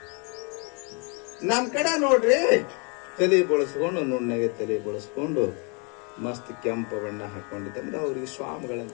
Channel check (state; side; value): quieter; right; 34.3 dB